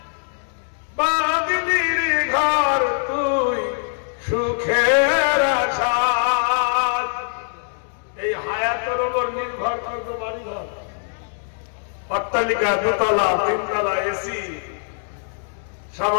বাঁধলির ঘর তুই সুখের আশায়। এই হায়াতের উপর নির্ভর করতো বাড়ি ঘর, অট্টালিকা, দোতলা, তিনতলা, এসি।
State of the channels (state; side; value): silent; right; 59 dB below the other